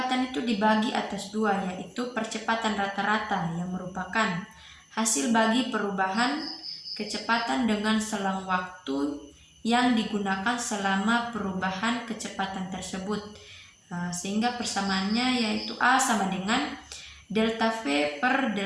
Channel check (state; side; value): identical; both; correlation 1.00